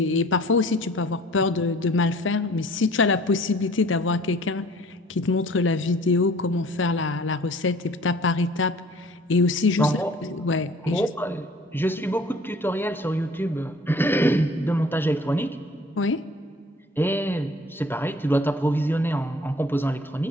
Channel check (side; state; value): both; normal; correlation 0.51